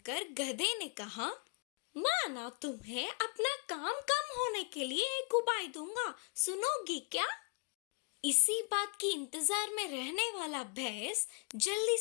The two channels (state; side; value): quieter; right; 36.9 dB